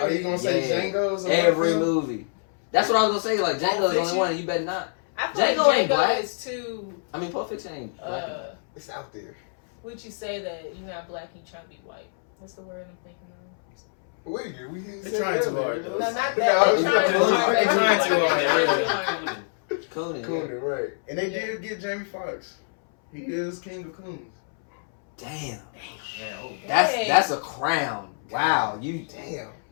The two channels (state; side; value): silent; right; 61 dB below the other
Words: you gonna say Yeah. Django's? or Every whatever? movie. That's what I was gonna say. Like Django's the only Fiction? one, and you better not. I feel like Django ain't Django black. is too. I mean, Pulp Fiction ain't black. It's out there. Would you say that you're not black and you trying to be white? What's the word I'm thinking of? They're trying too hard though. No, not that. No, They're trying too hard. They're trying too hard. Coonan. Coonan, right? And they Yeah. did get Jamie Foxx. He is king of coons. Damn. Yeah, oh, That's a crown. Wow. You. Damn.